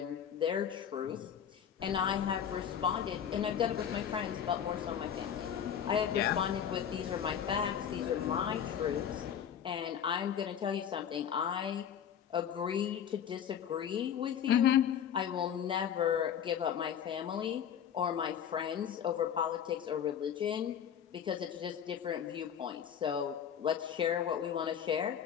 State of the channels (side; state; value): right; quieter; 8.8 dB